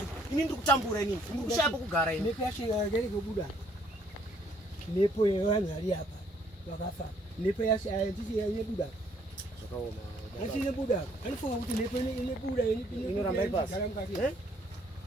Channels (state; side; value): normal; both; correlation 0.65